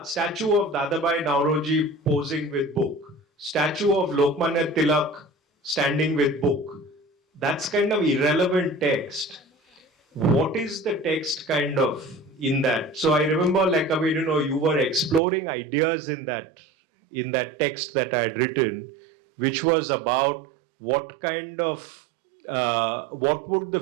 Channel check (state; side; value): drops out; left; at 15.2 s